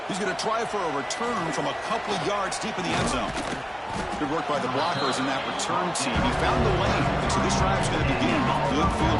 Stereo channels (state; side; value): identical; both; correlation 1.00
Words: He's going to try for a return from a couple of yards deep in the end zone. Good work by the blockers in that return team. He found the lane, and so this drive's going to begin with good field